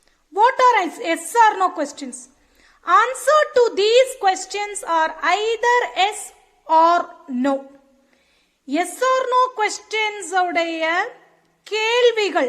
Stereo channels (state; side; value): identical; both; correlation 1.00